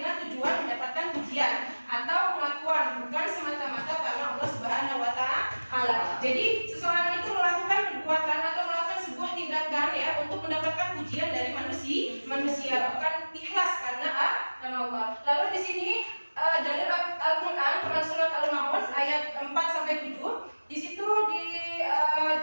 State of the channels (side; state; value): both; inverted; correlation -1.00